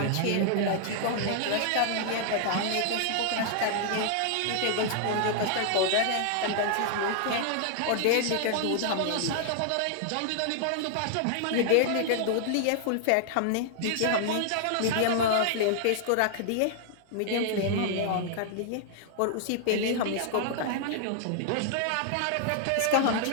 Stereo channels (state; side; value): different; both; correlation -0.01